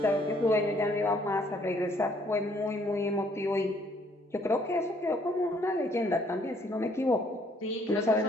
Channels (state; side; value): normal; both; correlation 0.64